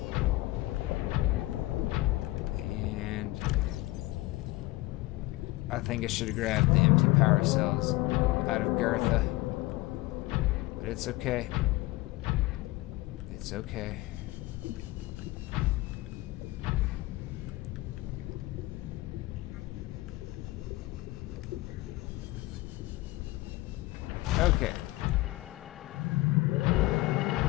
I think I should have grabbed the empty power cells out of Girtha. But it's okay. It's okay. Okay.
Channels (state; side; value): quieter; right; 19.5 dB